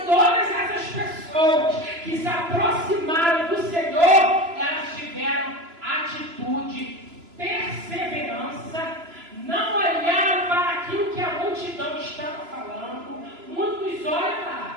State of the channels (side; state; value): left; late; 3.0 ms